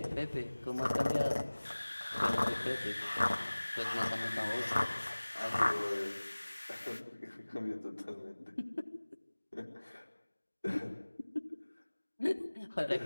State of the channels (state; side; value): inverted; both; correlation -1.00